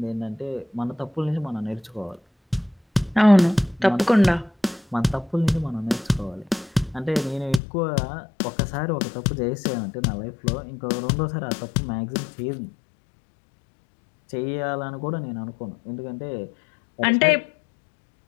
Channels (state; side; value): drops out; right; at 7.6 s